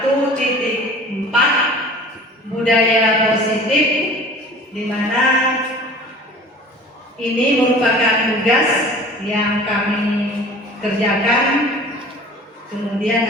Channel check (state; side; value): normal; both; correlation 0.44